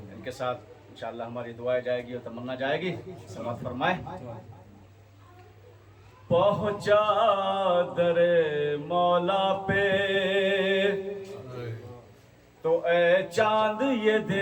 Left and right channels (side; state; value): both; identical; correlation 1.00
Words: کے ساتھ انشاءاللہ ہماری دعائیں جائے گی اور تمنا جائے گی۔ سماعت فرمائے۔ پہنچا در مولا پہ تو اے چاند یہ